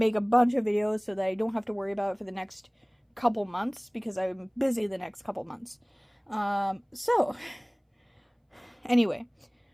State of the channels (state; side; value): identical; both; correlation 1.00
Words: a bunch of videos so that I don't have to worry about it for the next couple months, because I'm busy the next couple months. So, anyway,